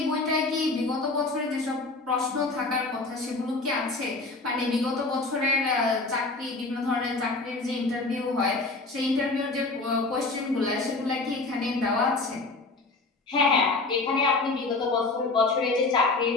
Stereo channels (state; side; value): quieter; right; 3.4 dB